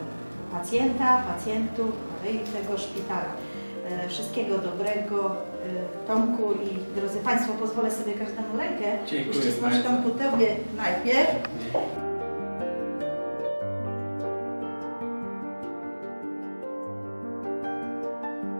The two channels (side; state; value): both; inverted; correlation -1.00